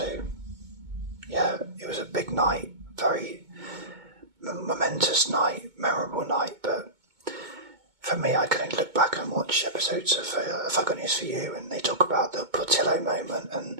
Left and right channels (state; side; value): late; left; 2.2 ms